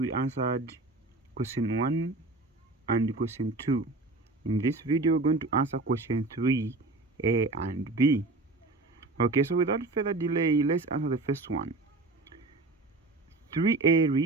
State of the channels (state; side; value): quieter; left; 3.2 dB